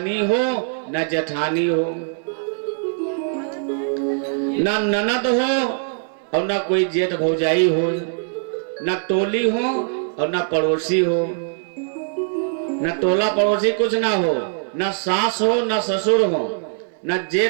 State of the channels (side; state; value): left; silent; 65 dB below the other